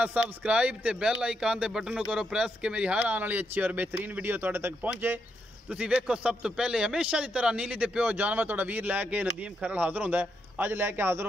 सबसक्राइब ते बैल आइकन दे बटन को करो प्रेस के मेरी हर आने वाली अच्छी और बेहतरीन वीडियो तुहाडे तक पहुंचे। तुसी वेखो सब तो पहले हमेशा की तरह नीली दे पियो जानवर तुहाडा वीर लैके नदीम खरल हाजिर होंदा है। अज लैके हाजिर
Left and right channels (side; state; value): both; normal; correlation 0.81